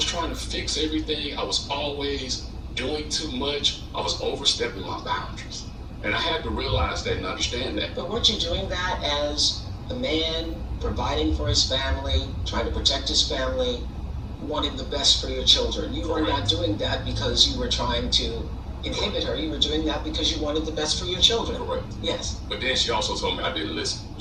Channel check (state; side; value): identical; both; correlation 1.00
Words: trying to fix everything. I was always doing too much. I was overstepping my boundaries. And I had to realize that and understand that. But weren't you doing that as a man, providing for his family, trying to protect his family, wanting the best for your children? You were not doing that because you were trying to inhibit her. You were doing that because you wanted the best for your children. Correct. Yes. But then she also told me I didn't listen.